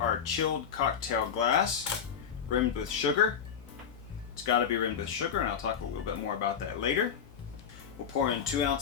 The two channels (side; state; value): right; quieter; 7.6 dB